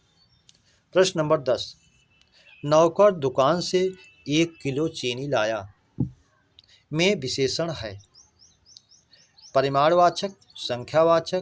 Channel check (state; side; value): identical; both; correlation 1.00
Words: प्रश्न नंबर 10, नौकर दुकान से 1 किलो चीनी लाया में विशेषण है। परिमाणवाचक,